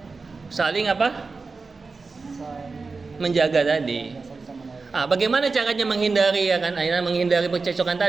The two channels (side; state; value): left; quieter; 4.2 dB